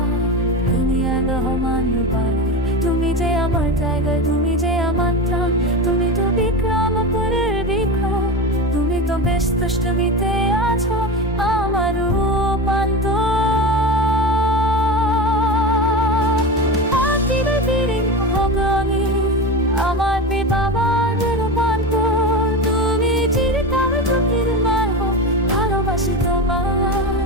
আদিয়ান রহমান রূপান্তর। তুমি যে আমার টাইগার, তুমি যে আমার প্রাণ, তুমি তো বিক্রমপুরের বিক্রম, তুমি তো বেশ দুষ্টুমিতে আছো আমার রূপ। আমার বাবার রূপান্তর, তুমি চিরকাল চোখের মায় হও, ভালোবাসি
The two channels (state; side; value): normal; both; correlation 0.23